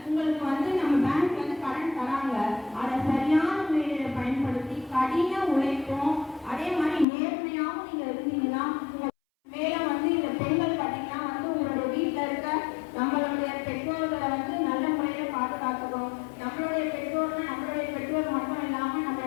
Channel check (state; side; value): drops out; right; at 7.1 s